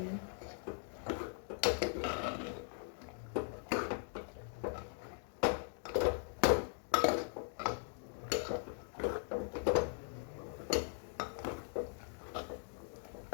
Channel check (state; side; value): silent; right; 51 dB below the other